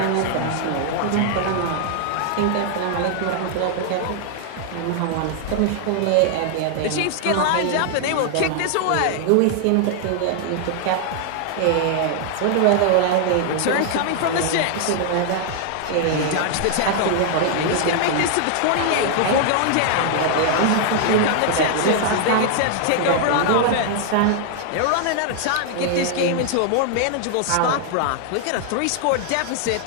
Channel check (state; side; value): different; both; correlation 0.00